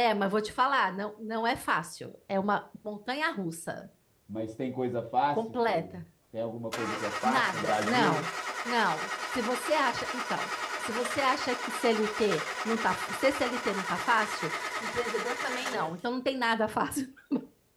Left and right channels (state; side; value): identical; both; correlation 1.00